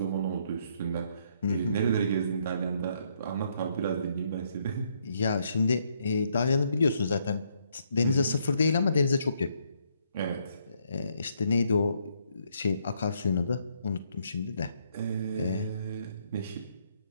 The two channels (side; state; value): both; inverted; correlation -0.72